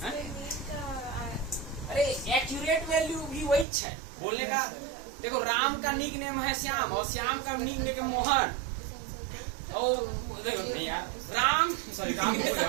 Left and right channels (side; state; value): left; drops out; at 3.7 s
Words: अरे एक्यूरेट वैल्यू भी वही है बोलने का। देखो राम का निक नेम है श्याम, और श्याम का निक नेम मोहन, और देखो नहीं यार, राम